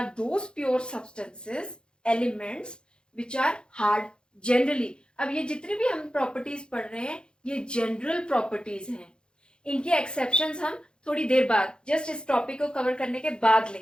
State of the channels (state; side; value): late; right; 0.050 ms